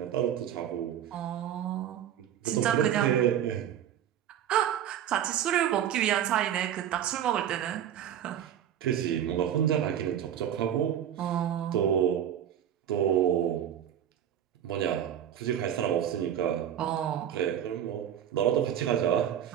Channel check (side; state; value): left; quieter; 10.1 dB